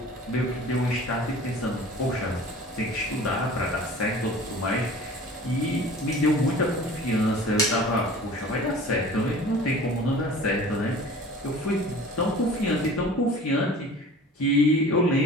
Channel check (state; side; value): normal; both; correlation 0.43